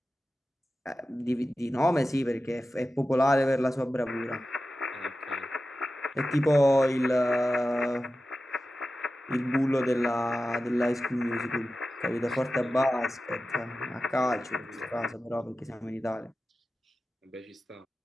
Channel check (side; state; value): both; normal; correlation 0.94